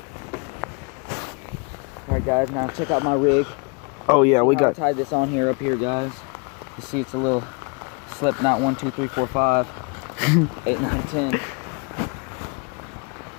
Alright guys, now check out my rig. Oh yeah, we got... I tied this on here, up here, guys. You see it's a little slip knot, 1, 2, 3, 4, 5, 8, 9, 10. It's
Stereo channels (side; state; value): right; quieter; 32.8 dB